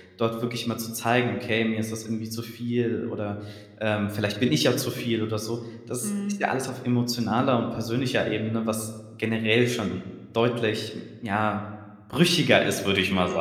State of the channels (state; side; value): identical; both; correlation 1.00